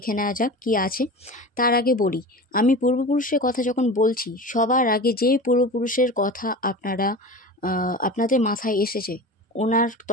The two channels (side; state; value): both; normal; correlation 0.32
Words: নেওয়া যাক কী আছে। তার আগে বলি, আমি পূর্বপুরুষের কথা যখন বলছি, সবার আগে যে পূর্বপুরুষের কথা আপনাদের মাথায় এসেছে, ওনার